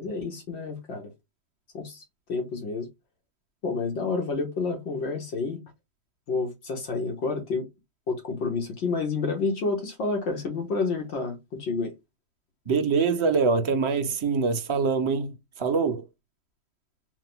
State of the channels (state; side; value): late; right; 3.1 ms